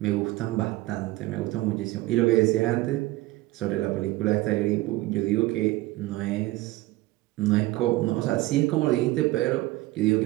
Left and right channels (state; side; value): quieter; left; 18.8 dB